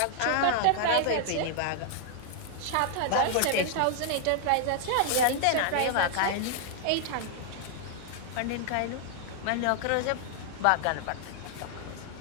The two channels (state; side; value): different; both; correlation 0.00